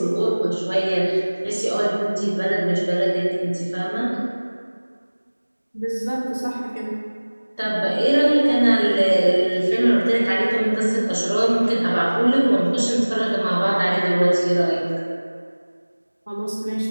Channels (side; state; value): both; inverted; correlation -1.00